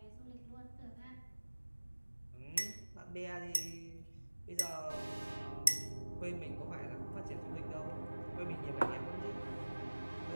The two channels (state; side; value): inverted; both; correlation -1.00